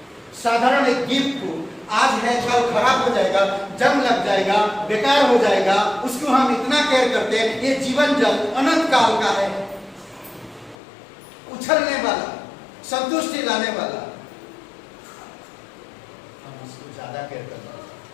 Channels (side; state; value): right; drops out; at 10.8 s